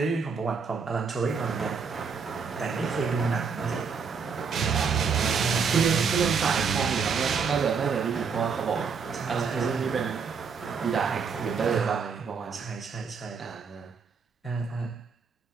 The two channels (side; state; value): left; quieter; 5.7 dB